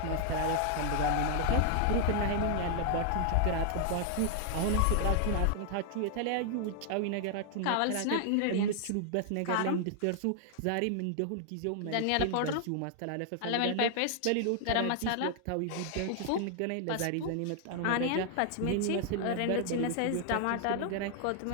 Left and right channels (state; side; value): different; both; correlation 0.00